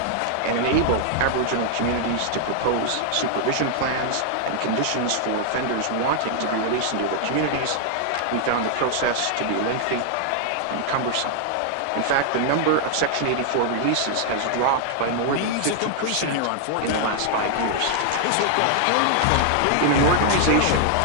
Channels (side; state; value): both; different; correlation 0.00